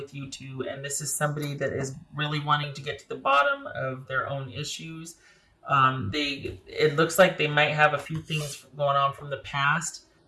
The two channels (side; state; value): both; identical; correlation 1.00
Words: you two, and this is somebody that is really wanting to get to the bottom of their own issues. It looks like they might have a few things going on from the past